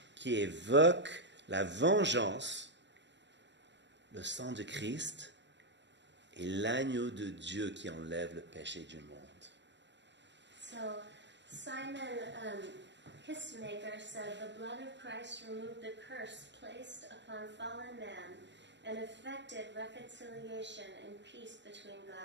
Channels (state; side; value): late; left; 0.52 ms